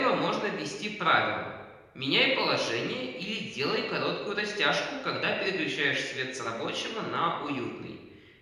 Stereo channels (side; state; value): both; identical; correlation 1.00